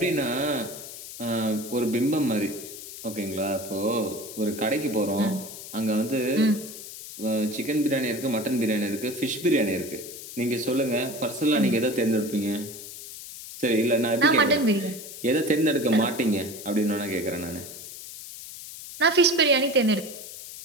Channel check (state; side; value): noise; left; hiss, 12 dB below the sound